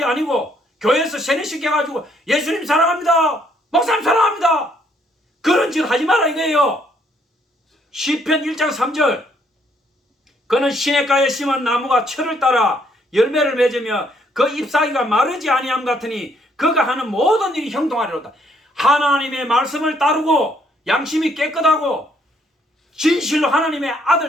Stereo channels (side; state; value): both; normal; correlation 0.69